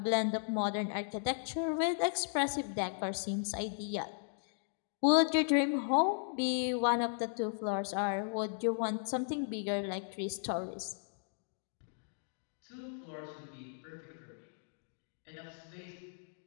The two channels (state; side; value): silent; right; digital silence